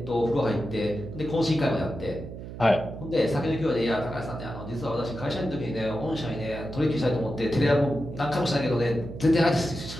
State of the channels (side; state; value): right; noise; hum, 11 dB below the sound